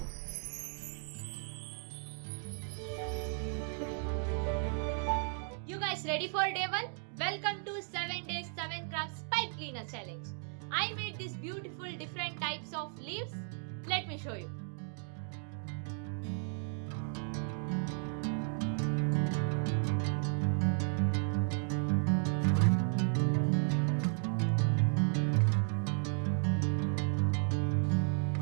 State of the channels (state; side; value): silent; left; 55 dB below the other